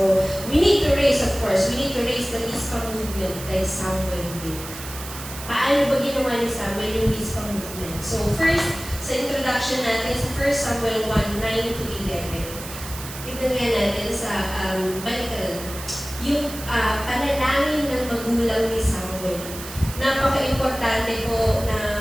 we need to raise, of course, we need to raise the Rizpa movement like Samuel did. Paano ba ginawa ni Samuel yung Rizpa movement? So, first, sa introduction natin sa 1 Samuel 1:9-11. Tignan nga natin sa balikan. Yung panalangin ng magulang ni Samuel. Napaka-importante po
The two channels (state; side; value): noise; right; hiss, 12 dB below the sound